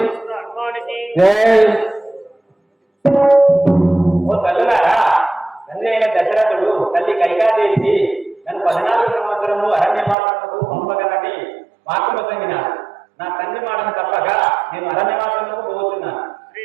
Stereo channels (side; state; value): left; drops out; at 10.2 s